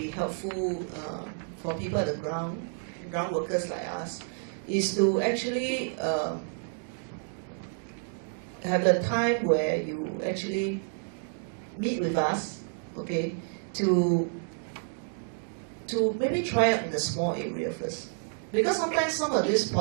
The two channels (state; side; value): silent; left; 58 dB below the other